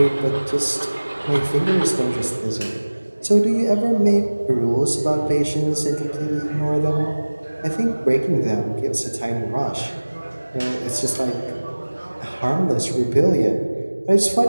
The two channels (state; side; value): inverted; both; correlation -1.00